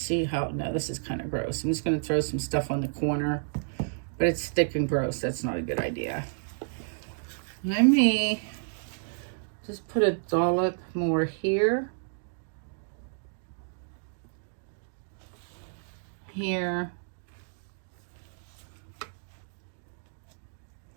how, no, this is kind of gross. I'm just going to throw some stuff on the corner, but it's thick and gross. That's not a good idea. Let me just put a dollop more here. Here.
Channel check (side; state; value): left; silent; digital silence